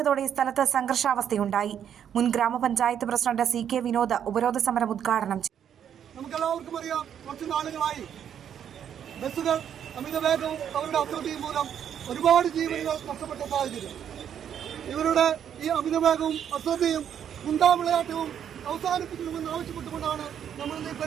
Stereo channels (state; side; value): quieter; left; 9.0 dB